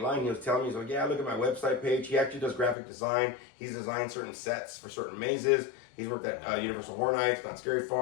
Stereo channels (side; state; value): right; drops out; at 2.8 s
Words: line, he was telling me, he's like, yeah, look at my website page. He actually does graphic design. He's designed certain sets for certain mazes. He's worked at Universal Horror Nights, Not Scary